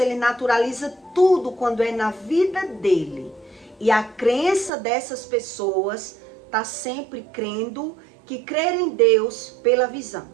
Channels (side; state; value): left; drops out; at 4.7 s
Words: naturaliza tudo quando é na vida dele. E a crença dessas pessoas está sempre crendo que crer em Deus pela visão.